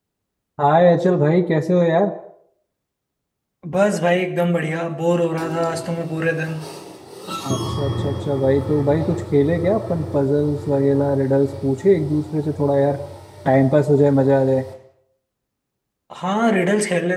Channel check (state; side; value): identical; both; correlation 1.00